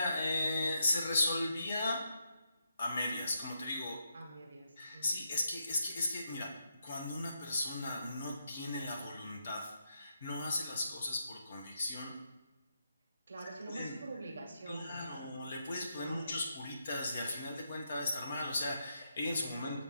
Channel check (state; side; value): inverted; both; correlation -0.80